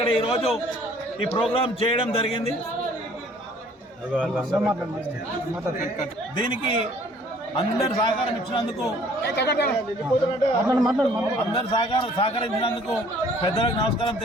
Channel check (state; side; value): normal; both; correlation 0.56